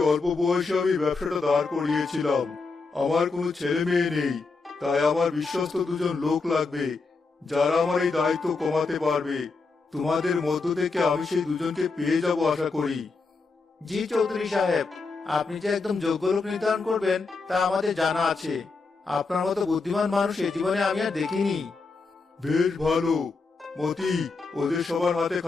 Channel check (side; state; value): right; quieter; 4.1 dB